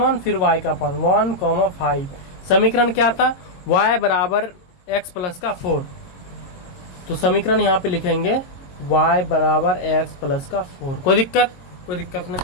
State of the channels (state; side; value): late; right; 22 ms